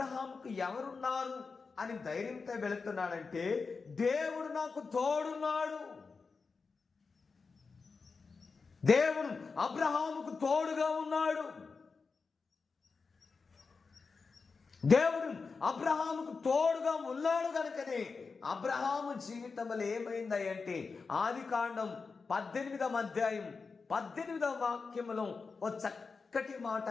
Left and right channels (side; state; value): right; quieter; 4.7 dB